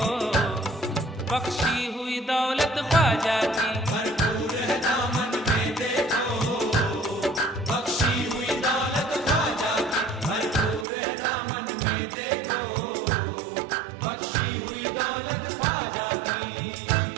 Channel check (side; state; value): left; drops out; at 10.9 s